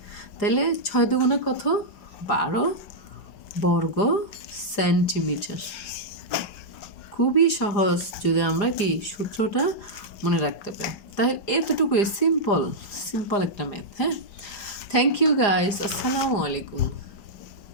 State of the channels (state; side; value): late; right; 4.9 ms